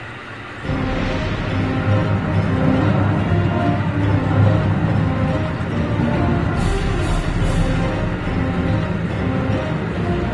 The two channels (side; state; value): both; identical; correlation 1.00